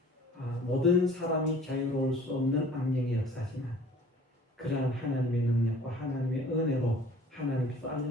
모든 사람이 자유로울 수 없는 악령의 역사지만 그러한 하나님의 능력과 하나님의 은혜로 하나님께서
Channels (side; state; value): both; normal; correlation 0.50